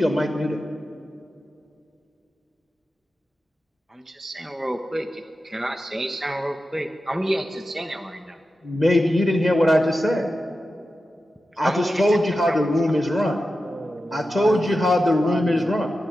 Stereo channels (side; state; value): both; normal; correlation 0.92